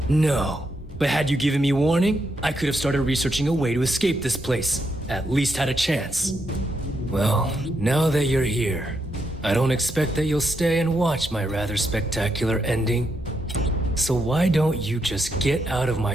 No, but had you given me warning, I could have started researching a way to escape this place. At least had a chance. Well, now that you're here, I don't expect that you'll stay and watch my rather spectacular ending. So why don't you just get out of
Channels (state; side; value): normal; both; correlation 0.80